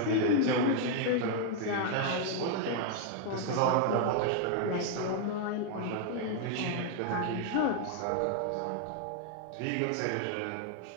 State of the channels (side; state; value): both; different; correlation 0.00